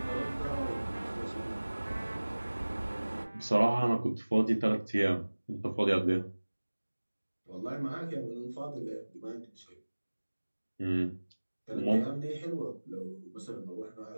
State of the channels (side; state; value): both; inverted; correlation -1.00